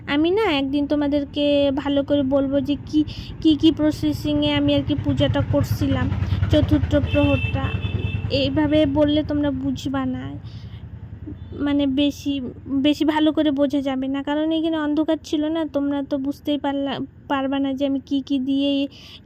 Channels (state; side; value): identical; both; correlation 1.00